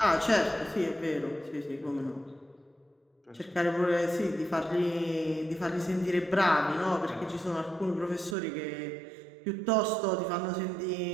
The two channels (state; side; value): drops out; left; at 8.3 s